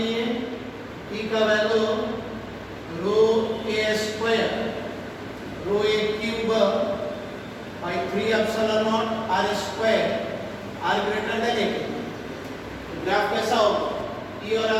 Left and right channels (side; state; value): both; identical; correlation 1.00